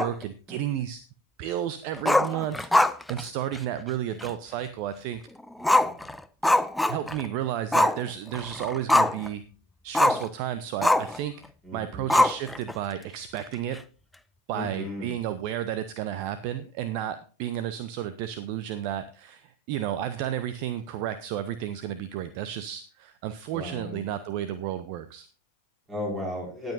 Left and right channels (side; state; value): both; normal; correlation 0.61